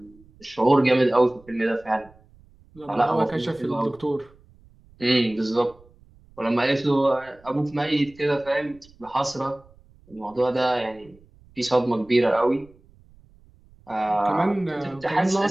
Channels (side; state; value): right; noise; rumble, 28 dB below the sound